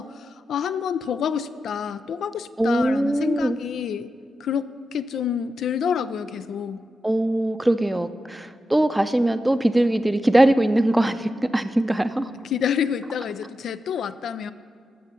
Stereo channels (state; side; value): normal; both; correlation 0.89